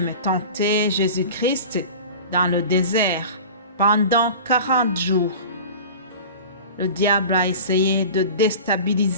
tenter Jésus-Christ dans le désert pendant 40 jours. Le diable a essayé de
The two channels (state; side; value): inverted; both; correlation -0.37